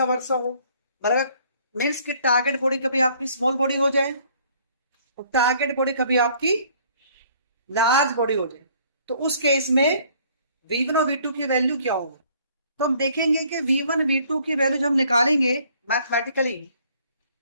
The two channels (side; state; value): both; inverted; correlation -0.60